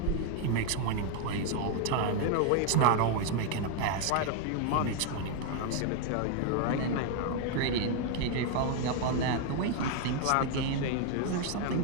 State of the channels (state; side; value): different; both; correlation 0.01